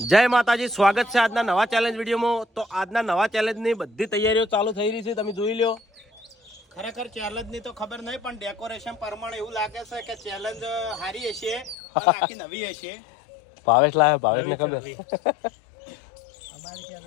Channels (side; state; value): right; drops out; at 11.8 s